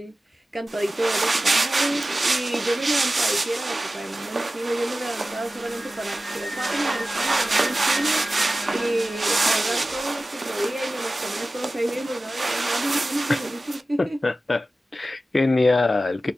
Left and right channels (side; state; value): both; normal; correlation 0.95